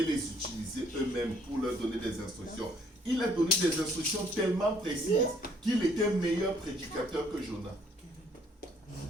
les utiliser eux-mêmes pour leur donner des instructions. Il a donné des instructions tellement précises qu'il était meilleur prédicateur que Jonas.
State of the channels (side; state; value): both; normal; correlation 0.63